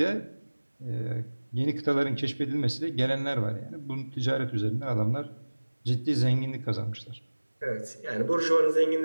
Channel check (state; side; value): inverted; both; correlation -1.00